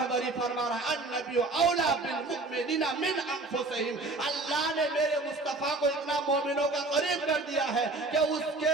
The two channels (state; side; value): quieter; left; 3.1 dB